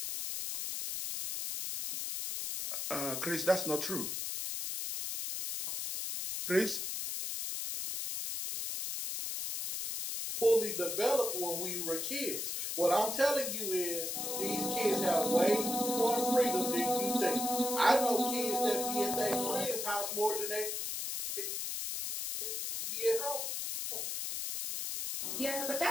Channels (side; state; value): left; noise; hiss, 3 dB below the sound